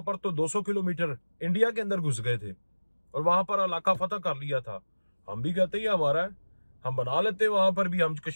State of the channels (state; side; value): inverted; both; correlation -1.00